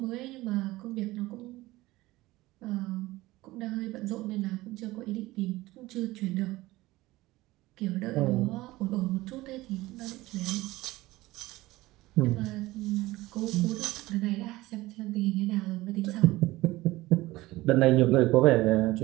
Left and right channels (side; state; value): left; quieter; 18.7 dB